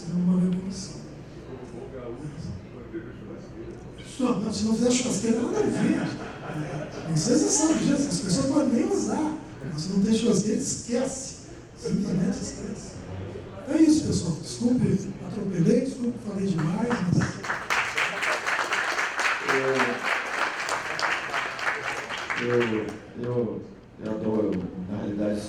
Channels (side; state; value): both; identical; correlation 1.00